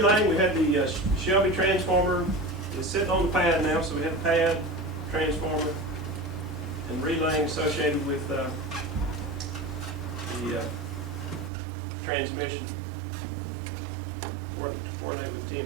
we had the Shelby transformer. It's sitting on the pad now, so we have the pad, transformer, and relaying associated with the transmission. Coordinate with the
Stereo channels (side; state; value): left; drops out; at 11.5 s